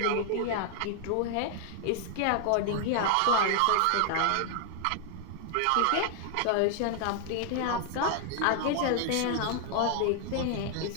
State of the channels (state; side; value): different; both; correlation 0.00